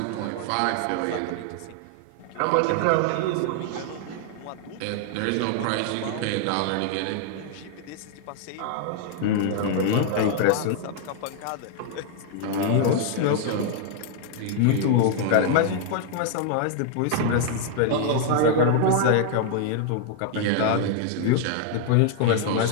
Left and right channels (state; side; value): different; both; correlation 0.00